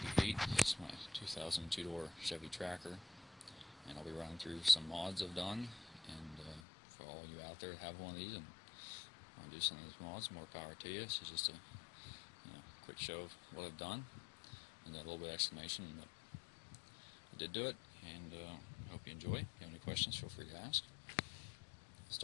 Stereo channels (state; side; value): drops out; right; at 6.6 s